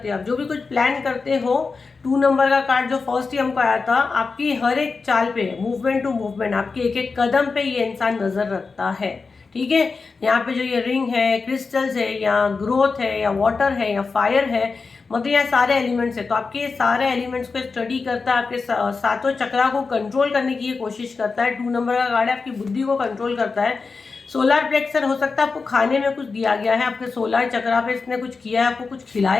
हो, आप जो भी कुछ प्लान करते हो, 2 नंबर का कार्ड जो फर्स्ट ही हमको आया था, आपकी हर एक चाल पे, मूवमेंट टू मूवमेंट, आपके एक एक कदम पे ये इंसान नजर रखता है, ठीक है। यहाँ पे जो ये रिंग है, क्रिस्टल्स है, या ग्रोथ है, या वाटर है, या फायर है, मतलब यहाँ सारे एलिमेंट्स है। तो आपके ये सारे एलिमेंट्स को स्टडी करता है, आपके सातों चक्रा को कंट्रोल करने की ये कोशिश करता है। 2 नंबर का कार्ड है, आपकी बुद्धि को कंट्रोल करता है। सोलर प्लेक्सर हो सकता है आपको खाने में कुछ दिया गया है, आपके सोलर चक्रा पे इसने कुछ किया है, आपको कुछ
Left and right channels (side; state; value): right; quieter; 4.5 dB